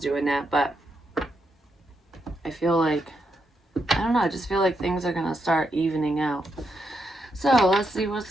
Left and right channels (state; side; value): normal; both; correlation 0.81